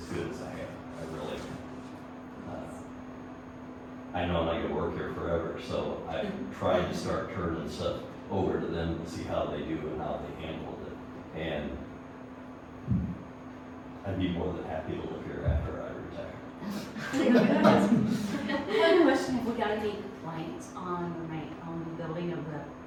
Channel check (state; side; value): identical; both; correlation 1.00